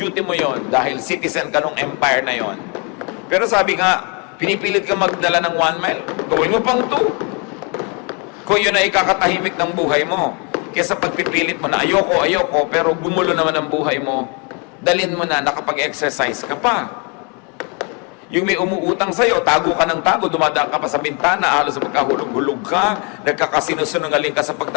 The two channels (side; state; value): right; quieter; 34.0 dB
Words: mo yon dahil citizen ka nung empire na yon. Pero sabi nga, pinipilit ka magdala ng 1 mile, gawin mo pang 2. Kung yun ay ikakatahimik ng buhay mo. Kesa pagpipilit mo na ayoko, pero gumulo naman ang buhay mo, dalhin mo na nakapag-exercise ka pa. Yung may umuutang sa'yo, tago ka ng tago, dumadaan ka pa sa bintana, halos magkahulog-hulog ka, nagkakasinungaling ka sa